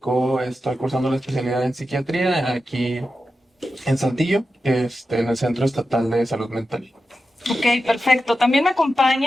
estoy cursando la especialidad en psiquiatría aquí en Saltillo, en el Centro Estatal de Salud Mental. Ok, perfecto. También me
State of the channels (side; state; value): both; normal; correlation 0.91